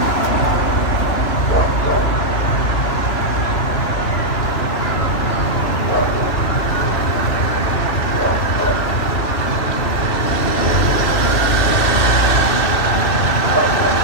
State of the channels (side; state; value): right; late; 2.6 ms